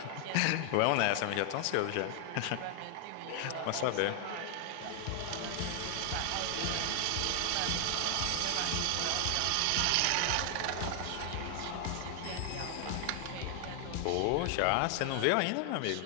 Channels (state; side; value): different; both; correlation 0.00